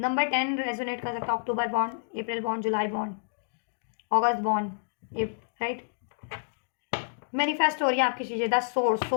10 रेजोनेट कर सकता है, अक्टूबर बॉन्ड, अप्रैल बॉन्ड, जुलाई बॉन्ड, अगस्त बॉन्ड, राइट। मैनिफेस्ट हो रही है आपकी चीज़ें, द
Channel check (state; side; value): silent; right; digital silence